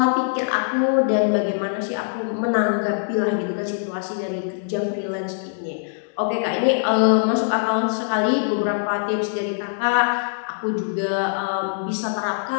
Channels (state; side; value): silent; right; 64 dB below the other